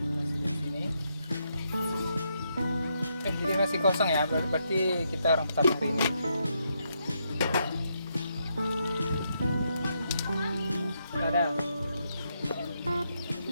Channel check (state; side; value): inverted; both; correlation -0.79